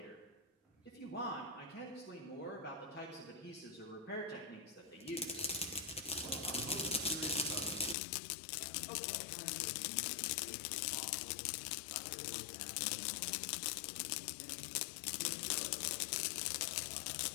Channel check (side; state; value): right; drops out; at 8.0 s